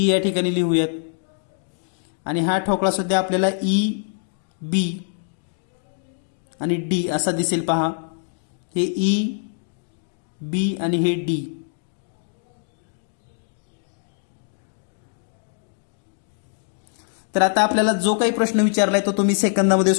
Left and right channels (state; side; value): silent; right; digital silence